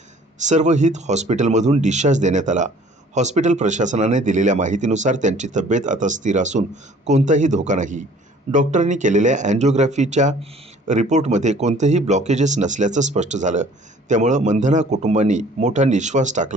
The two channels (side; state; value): both; normal; correlation 0.53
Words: सर्वहित हॉस्पिटलमधून डिस्चार्ज देण्यात आला. हॉस्पिटल प्रशासनाने दिलेल्या माहितीनुसार त्यांची तब्येत आता स्थिर असून कोणताही धोका नाही. डॉक्टरांनी केलेल्या अँजिओग्राफीच्या रिपोर्टमध्ये कोणतेही ब्लॉकेजेस नसल्याचं स्पष्ट झालं. त्यामुळं मंधना कुटुंबांनी मोठा निश्वास